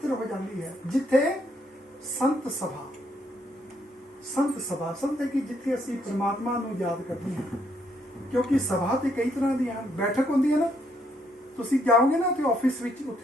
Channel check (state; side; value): normal; both; correlation 0.72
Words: हो जाती है जिथे संत सभा संत है कि जिथे असी परमात्मा नूं याद करते हैं। क्योंकि सभा तो कई तरह दी हैं, बैठक होंदी है ना, तुसी जाओगे ना तो ऑफिस विच